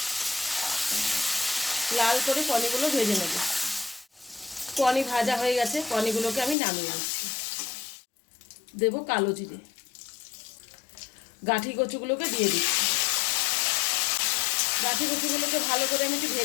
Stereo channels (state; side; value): drops out; right; at 6.6 s